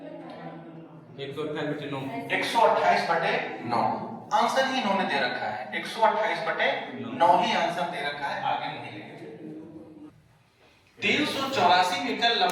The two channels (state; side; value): identical; both; correlation 1.00